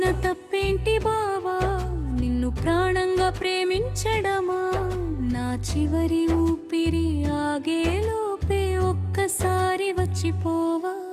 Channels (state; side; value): identical; both; correlation 1.00